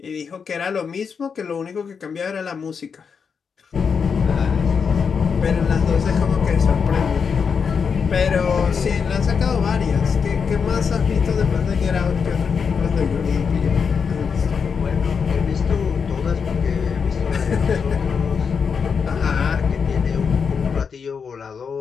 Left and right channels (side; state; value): right; quieter; 6.1 dB